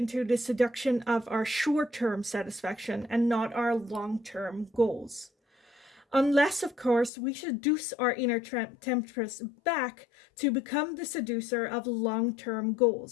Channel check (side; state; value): right; drops out; at 7.1 s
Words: the seduction of our short-term satisfaction and not our long-term goals. Unless, of course, we seduce our inner temptress back to become the seducer of long-term